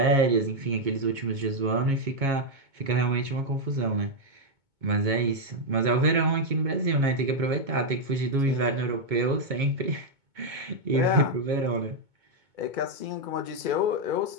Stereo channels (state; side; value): late; left; 2.2 ms